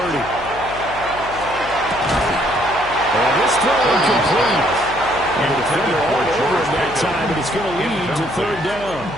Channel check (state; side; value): noise; left; hum, 15 dB below the sound